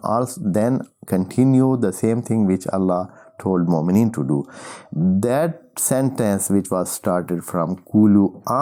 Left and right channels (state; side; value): identical; both; correlation 1.00